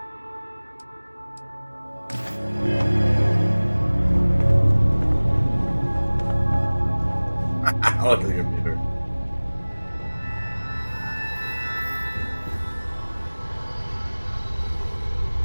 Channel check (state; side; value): inverted; both; correlation -1.00